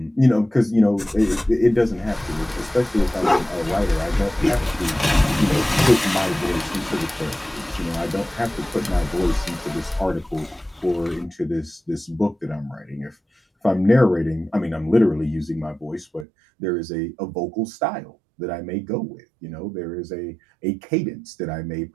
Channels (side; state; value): left; drops out; at 16.2 s